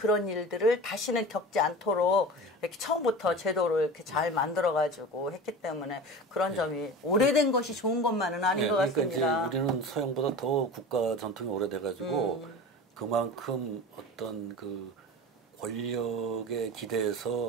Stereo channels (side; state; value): both; normal; correlation 0.33